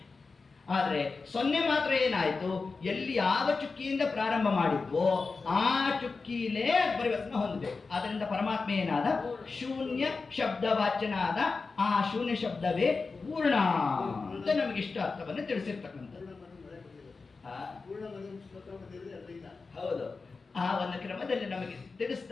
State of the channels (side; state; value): right; quieter; 4.3 dB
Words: ಆದರೆ ಸೊನ್ನೆ ಮಾತ್ರ ಏನಾಯಿತು? ಎಲ್ಲಿ ಯಾವ ಚುಕ್ಕಿಯಿಂದ ಪ್ರಾರಂಭ ಮಾಡಿದ್ವೋ ಆ ಚುಕ್ಕಿಲೇ ಪರಿವರ್ತನೆ ಹೊಂದಬೇಕು. ಆದ್ದರಿಂದ ಪರಮಾತ್ಮ ಏನಾದ? ಶೂನ್ಯ ಶಬ್ದವಾಚ್ಯನಾದ. ಆ ಶೂನ್ಯ ಶಬ್ದವೇ ಪೂರ್ಣ ಅಂತ ನಮಗೆ ಇಷ್ಟ ಅರ್ಥವನ್ನು ತಿಳಿಸಿರ್ತಕ್ಕಂಥದ್ದು. ಹೌದು, ಆ ಒಂದು ಕ್ರಮದಲ್ಲಿ ನಮಗೆ